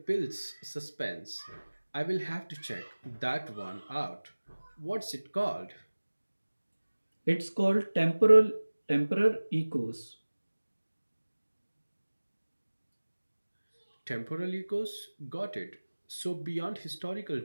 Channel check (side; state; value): both; inverted; correlation -1.00